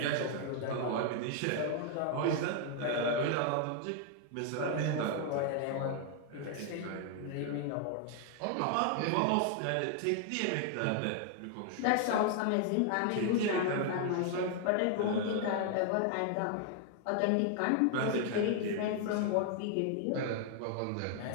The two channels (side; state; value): both; different; correlation 0.00